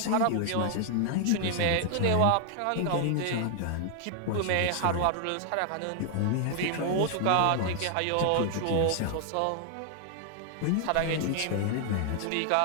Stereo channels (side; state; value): both; different; correlation 0.00